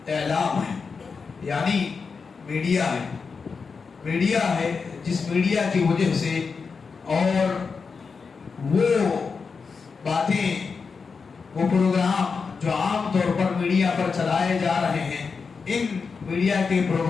اعلام ہے، یعنی میڈیا ہے۔ میڈیا ہے جس میڈیا کی وجہ سے اور وہ باتیں، وہ پروگرام جو عام طور پر میڈیا پر چلائے جا رہے ہیں، ان میڈیا کے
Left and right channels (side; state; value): right; quieter; 5.1 dB